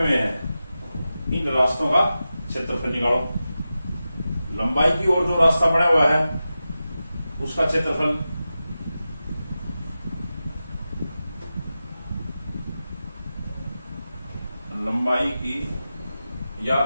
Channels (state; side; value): inverted; both; correlation -0.93